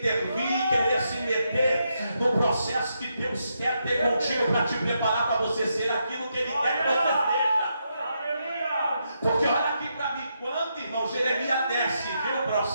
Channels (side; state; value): both; inverted; correlation -0.81